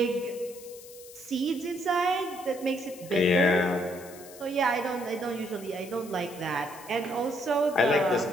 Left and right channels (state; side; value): noise; left; hiss, 18 dB below the sound